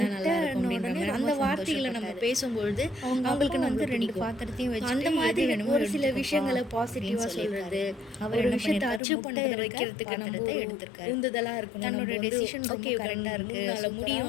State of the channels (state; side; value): drops out; right; at 9.0 s